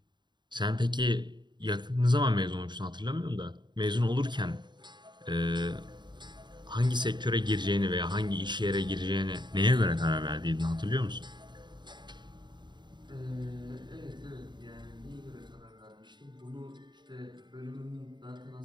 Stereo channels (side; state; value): left; late; 0.22 ms